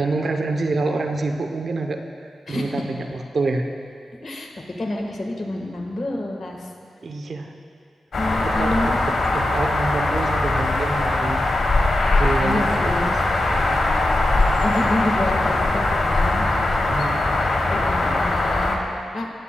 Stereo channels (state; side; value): normal; both; correlation 0.89